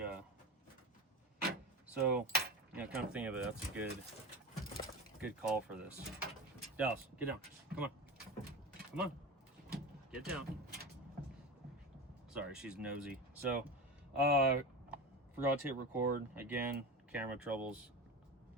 so, you know, kind of think of it, that's a good call for this. Dallas, get down. Come on. Come on. Get down. Sorry, she's nosy. So, forgot to hit record. Again, camera troubles.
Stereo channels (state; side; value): normal; both; correlation 0.27